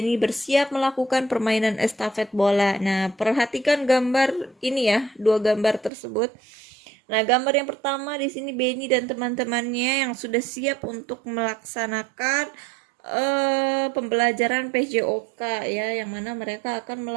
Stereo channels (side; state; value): left; drops out; at 5.9 s